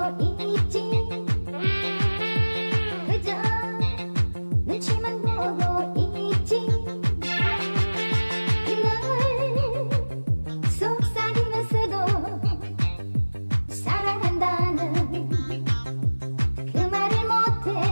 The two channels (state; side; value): inverted; both; correlation -1.00